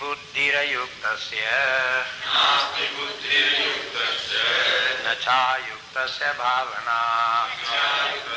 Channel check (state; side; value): identical; both; correlation 1.00